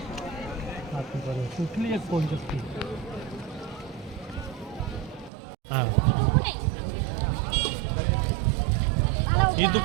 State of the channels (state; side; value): drops out; left; at 5.3 s